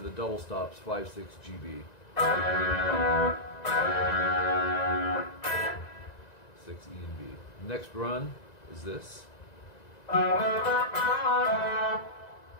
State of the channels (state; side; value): late; right; 1.9 ms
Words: double stops, 5, 6, GB. 6, E and B. Next run is this.